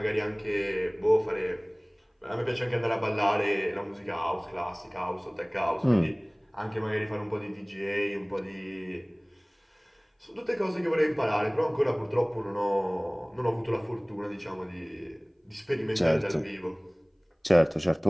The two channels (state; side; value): identical; both; correlation 1.00